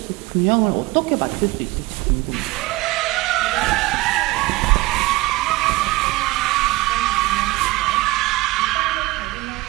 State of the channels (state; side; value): quieter; left; 20.1 dB